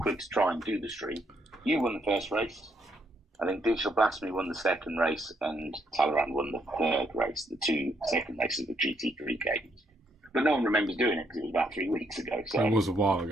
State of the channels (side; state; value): both; normal; correlation 0.74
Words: to try and do the stream. You won the first race. I think Digital Blasphemy won the second race, and Talleyrand won the third race. The two second races were GT3 games. But no one remembers doing it because it was about 3 weeks ago. So it was a while